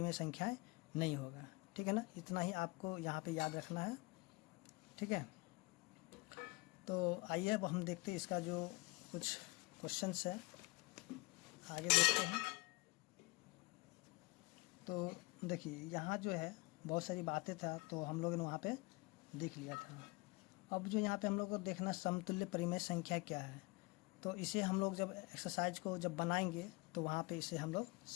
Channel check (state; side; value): quieter; right; 24.2 dB